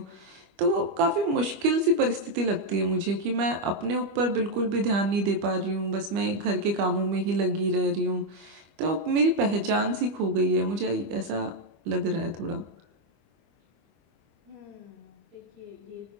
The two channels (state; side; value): late; left; 25 ms